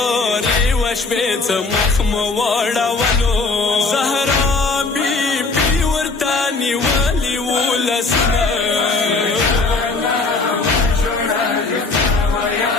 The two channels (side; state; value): right; quieter; 3.8 dB